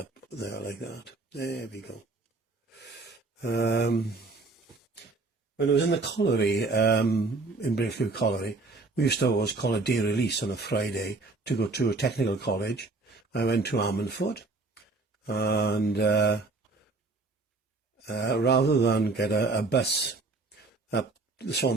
there like that. There we go. When I was in the colliery, in Brainfield Colliery, we used to always call a day release on a Friday to go to a technical college. I went to Ammanford, and rather than get a bus up the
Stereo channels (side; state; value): left; quieter; 3.6 dB